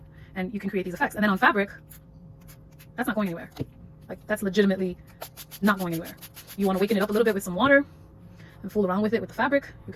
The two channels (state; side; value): identical; both; correlation 1.00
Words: and you can create these effects. And then on fabric, that's not going anywhere. Like, that's legitimately not going anywhere. You want to waken it up a little bit with some water and fool around with it with the fabric, you